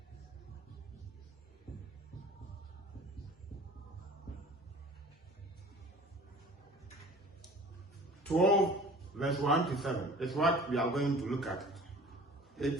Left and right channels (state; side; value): normal; both; correlation 0.45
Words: Verse 1 to 7 is what we are going to look at